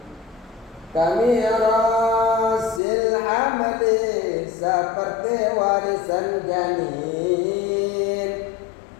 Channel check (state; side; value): drops out; right; at 2.8 s